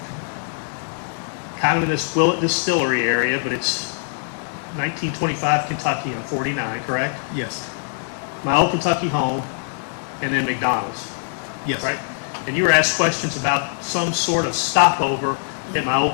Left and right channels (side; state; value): right; silent; digital silence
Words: kind of in this Willett Distillery area, but it's 1925 Kentucky on 49, correct? Yes. My old Kentucky home, and then McDonald's, Yes. right? And you were asked questions about some sort of stopover at my